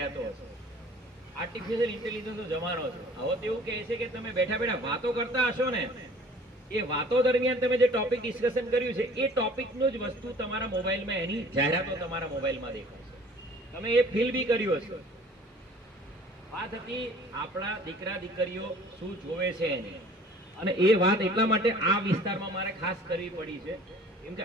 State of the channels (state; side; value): normal; both; correlation 0.49